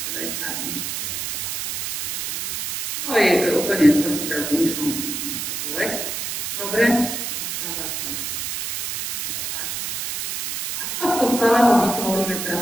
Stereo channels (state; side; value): noise; right; hiss, 3 dB below the sound